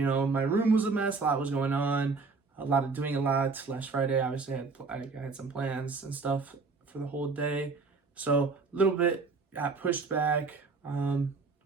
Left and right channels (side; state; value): left; quieter; 4.3 dB